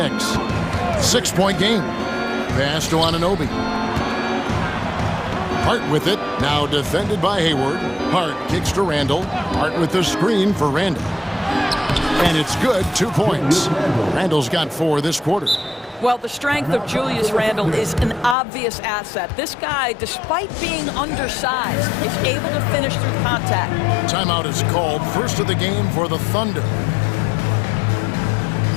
6-point game. Pass to Anunoby. Hart with it, now defended by Hayward. Hart kicks to Randall. Hart with the screen for Randall. And it's good, 2 points. Randall's got 4 this quarter. Well, the strength of Julius Randle is an obvious asset. This guy, despite being undersized, is able to finish through contact. Timeout is called, first of the game for the Thunder.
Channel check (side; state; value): right; drops out; at 18.4 s